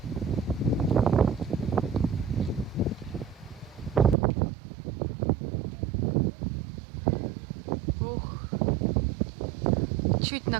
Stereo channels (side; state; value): left; drops out; at 4.2 s